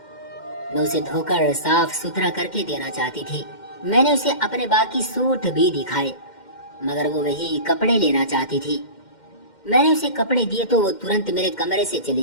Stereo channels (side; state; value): right; late; 2.1 ms